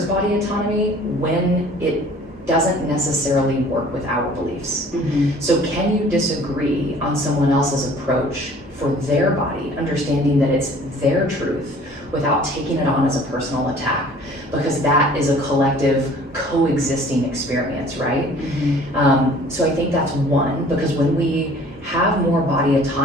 body autonomy when it doesn't necessarily work with our beliefs. Mm-hmm. So can you disagree on someone else's approach for their body, understanding that it's their truth without taking it on as a personal attack? Because that is a collective coexisting experience, right? Mm-hmm. So I think that's one, because when we have more body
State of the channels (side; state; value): both; normal; correlation 0.51